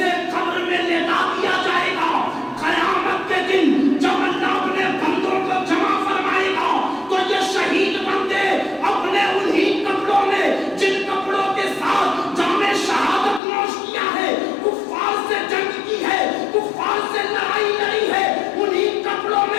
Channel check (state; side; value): drops out; right; at 13.4 s